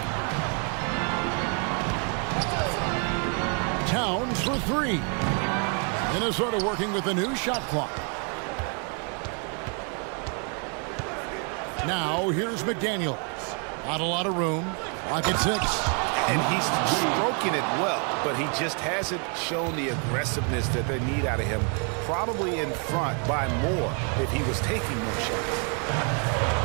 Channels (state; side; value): quieter; left; 39.1 dB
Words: Towns for 3. Minnesota working with a new shot clock. Now here's McDaniels. Not a lot of room. Pocket 6. And he's stroking it well, but he just hasn't shown the aggressiveness that they need out of him. Probably in front by more if he was taking more shots.